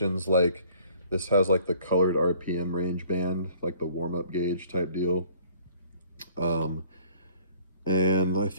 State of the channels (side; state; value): both; inverted; correlation -0.56